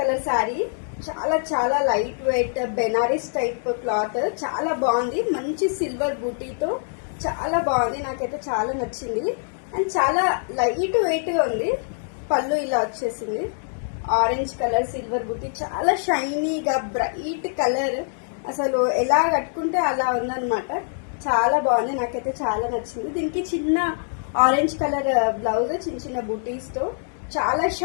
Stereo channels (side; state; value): right; silent; digital silence